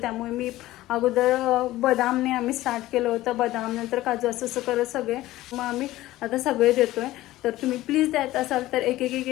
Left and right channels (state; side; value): quieter; right; 16.2 dB